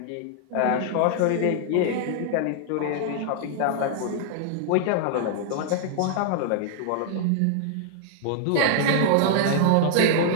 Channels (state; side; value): different; both; correlation -0.01